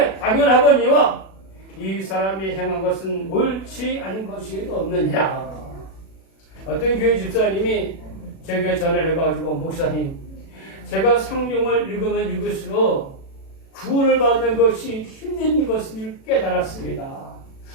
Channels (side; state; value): right; late; 36 ms